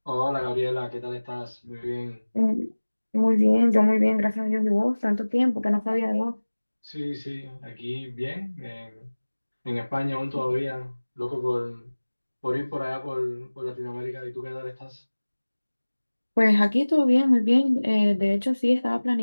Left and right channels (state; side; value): inverted; both; correlation -1.00